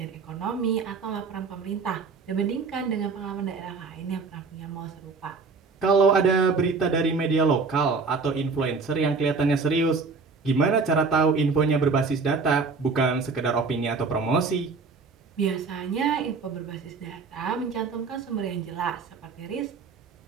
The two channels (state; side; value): quieter; left; 4.6 dB